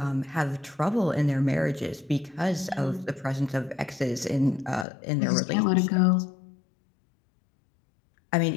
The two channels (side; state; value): right; drops out; at 4.9 s